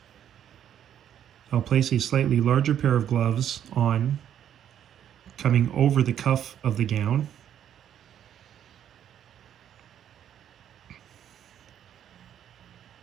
I'll place a slightly larger pair of gloves on, coming over the cuff of the gown.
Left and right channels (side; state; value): left; quieter; 10.0 dB